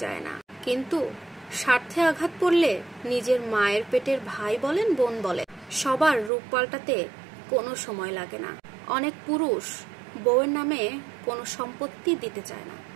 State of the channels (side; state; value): left; drops out; at 6.3 s